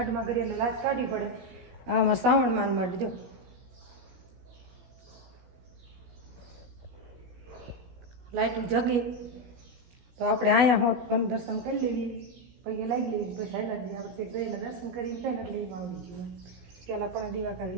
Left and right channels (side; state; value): left; late; 16 ms